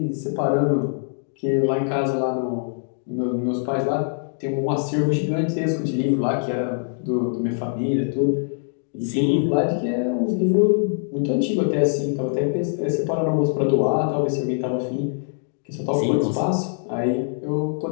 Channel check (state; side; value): silent; right; digital silence